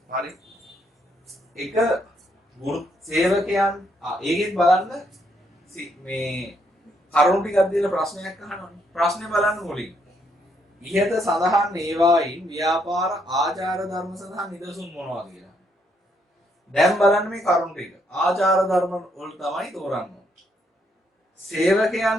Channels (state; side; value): normal; both; correlation 0.73